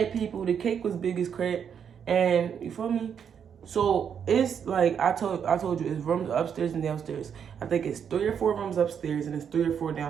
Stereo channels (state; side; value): quieter; left; 7.7 dB